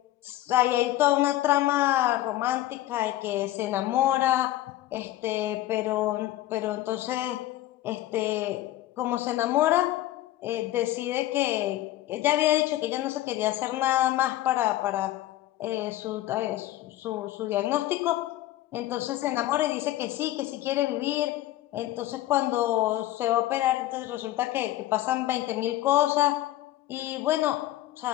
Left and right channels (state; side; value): quieter; right; 14.9 dB